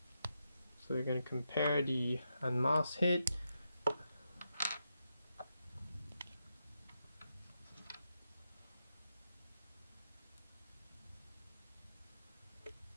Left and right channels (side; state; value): both; inverted; correlation -0.85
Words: we're going to compare the unmasked head.